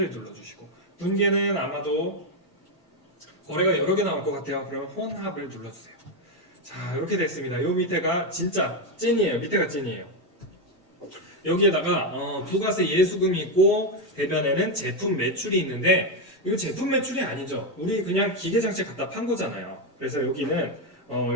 눌러주시고 분계는 아마도 거래가 여러 개 나올 것 같아요. 그럼 혼합을 눌러주세요. 자, 이렇게 됐습니다. 요 밑에가 진짜 찐이에요. 밑에가 찐이에요. 여기에다가 부가세 예수금이 있고 대변에는 제품 매출이 있는데 이거 제품 매출이 아니죠. 우리 그냥 기계장치 갖다 판 거잖아요. 그래서 여기는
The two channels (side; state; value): both; normal; correlation 0.07